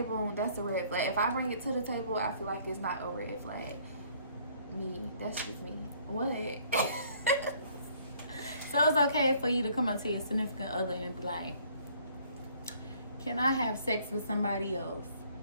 that's a red flag. If I bring it to the table, I feel like it's not a red flag. Me, that's just me. What? So it's okay for you to come up to your significant other and be like, can I have sex with somebody else?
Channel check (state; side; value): inverted; both; correlation -0.60